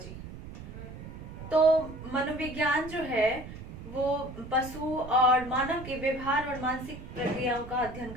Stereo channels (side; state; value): right; noise; rumble, 12 dB below the sound